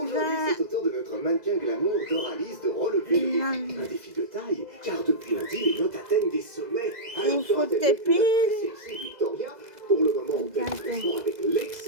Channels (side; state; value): left; late; 2.0 ms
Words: c'est au tour de notre mannequin glamour Doralice de relever le défi. Un défi de taille, car depuis lundi, les notes atteignent des sommets. Il faut Dora tes termine la très sexy Victoria, pour le moment, on teste avec